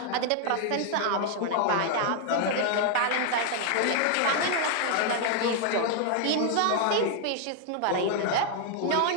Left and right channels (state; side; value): different; both; correlation 0.00